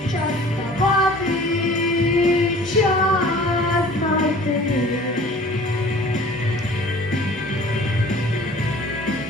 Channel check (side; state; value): both; normal; correlation 0.47